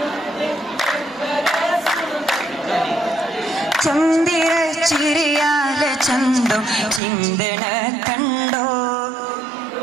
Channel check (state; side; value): drops out; left; at 7.0 s